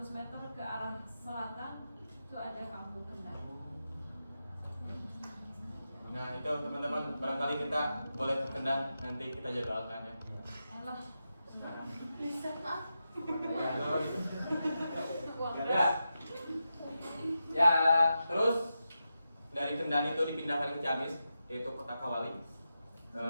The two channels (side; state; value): both; inverted; correlation -0.89